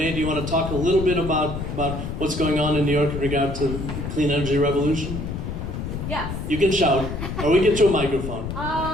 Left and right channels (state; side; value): noise; left; rumble, 5 dB below the sound